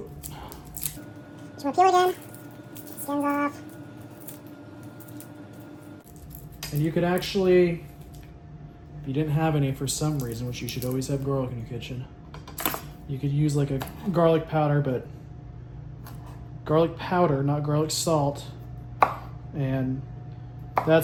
Just want to peel again. Skins off. And you could actually, if you didn't have any for some reason, which you should always have garlic in your kitchen, you could use like a garlic powder, but garlic powder, not garlic salt. And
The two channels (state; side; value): identical; both; correlation 1.00